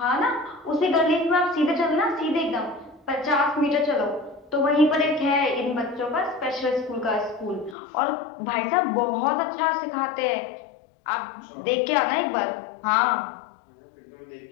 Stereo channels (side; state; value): right; drops out; at 7.8 s